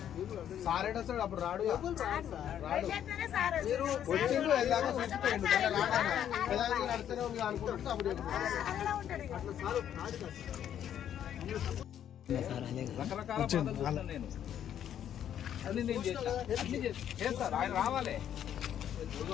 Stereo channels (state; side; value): quieter; right; 10.0 dB